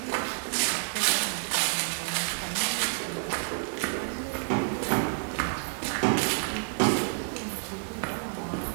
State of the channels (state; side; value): silent; left; 58 dB below the other